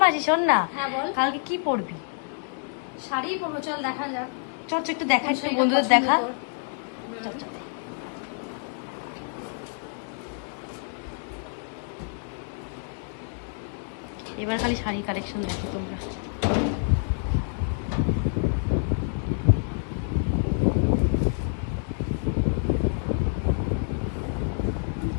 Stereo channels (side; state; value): right; silent; 60 dB below the other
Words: মাসি শোন না, হ্যাঁ বল। কালকে কি পরবি? শাড়ি পরবো, চল দেখা যাক। চল একটু দেখো, কোন শাড়িটা বন্ধুদের পছন্দ দেখা। তোর? এবার খালি শাড়ি কালেকশন দেখো তোমরা।